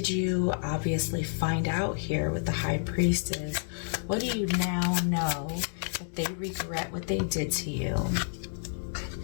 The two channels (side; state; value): right; silent; digital silence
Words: you obviously find out here with the High Priestess? What do you now know that they regret what they did to you?